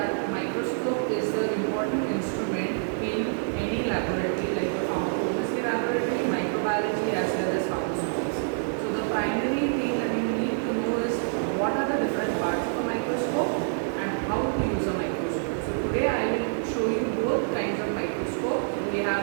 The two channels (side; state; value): left; silent; digital silence